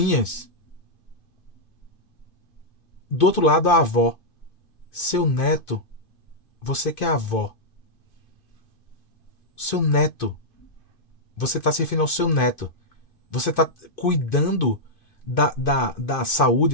Do outro lado, a avó. Seu neto. Você que é avó. Seu neto. Você está se referindo ao seu neto. Você está cuidando da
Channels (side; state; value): right; late; 2.5 ms